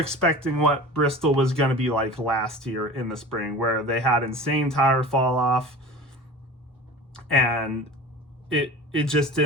what Bristol was going to be like last year in the spring, where they had insane tire fall off, and it just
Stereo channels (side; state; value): both; normal; correlation 0.37